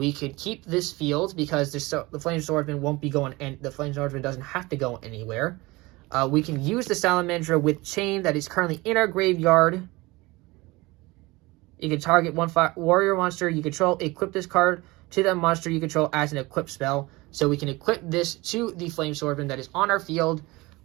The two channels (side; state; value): left; quieter; 22.1 dB